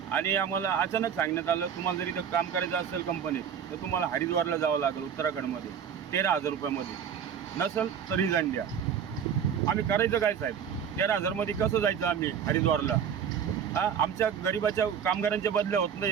आणि आम्हाला अचानक सांगण्यात आलं तुम्हाला जर इथं काम करायचं असेल कंपनीत तर तुम्हाला हरिद्वारला जावं लागेल उत्तराखंडमध्ये 13,000 रुपयामध्ये, नसेल तर रिझाईन द्या. आम्ही करायचं काय साहेब? 13,000मध्ये कसं जायचं आम्ही हरिद्वारला? आमच्या गरिबाच्या कामगारांच्या बदल्या होत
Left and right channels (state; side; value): quieter; left; 8.0 dB